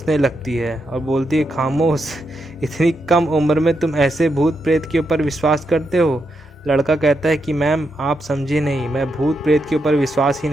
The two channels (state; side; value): normal; both; correlation 0.83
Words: लगती है और बोलती है खामोश, इतनी कम उम्र में तुम ऐसे भूत प्रेत के ऊपर विश्वास करते हो? लड़का कहता है कि मैम आप समझे नहीं, मैं भूत प्रेत के ऊपर विश्वास ही